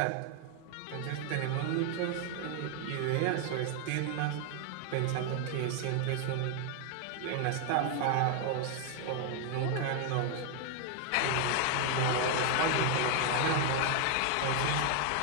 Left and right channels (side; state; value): both; different; correlation 0.00